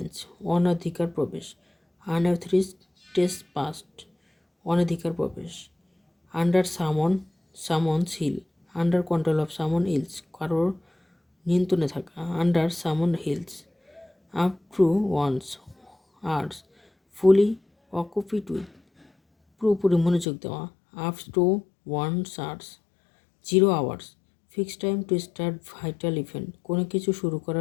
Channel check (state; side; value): drops out; right; at 20.2 s